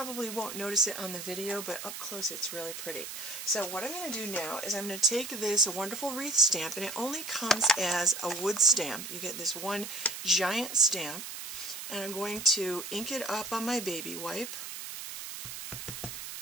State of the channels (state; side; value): noise; right; hiss, 8 dB below the sound